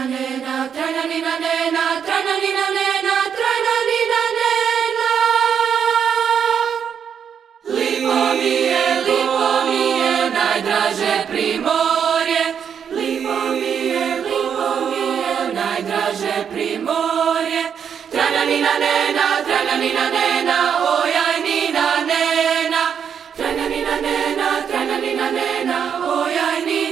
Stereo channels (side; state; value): left; quieter; 7.7 dB